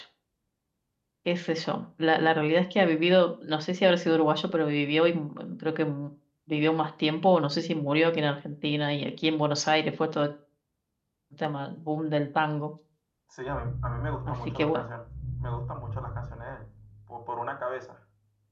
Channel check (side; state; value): both; identical; correlation 1.00